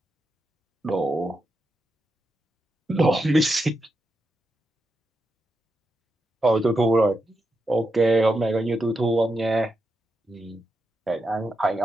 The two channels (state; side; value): normal; both; correlation 0.86